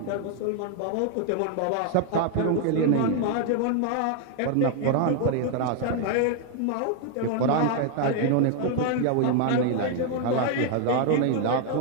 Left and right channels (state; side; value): different; both; correlation 0.00